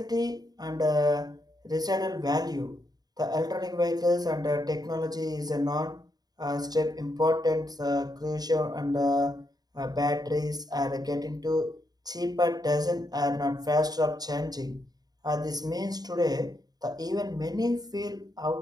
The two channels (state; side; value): late; left; 0.19 ms